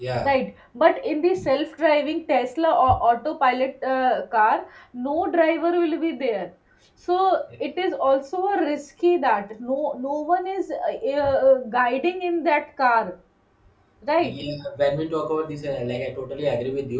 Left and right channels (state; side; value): identical; both; correlation 1.00